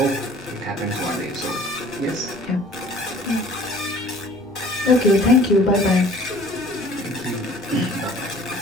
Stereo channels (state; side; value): noise; left; rumble, 25 dB below the sound